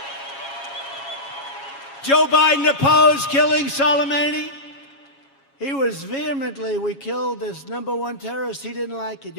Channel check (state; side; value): late; right; 7.3 ms